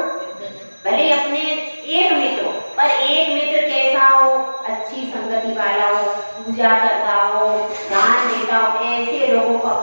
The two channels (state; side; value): inverted; both; correlation -1.00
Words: भले अपने एक मित्र, पर एक मित्र कैसा हो, अच्छी संगति वाला हो, पूजा करता हो, दान देता हो, ऐसे लोगों को